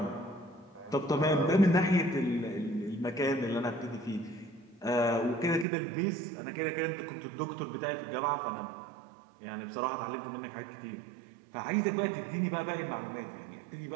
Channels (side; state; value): left; drops out; at 5.7 s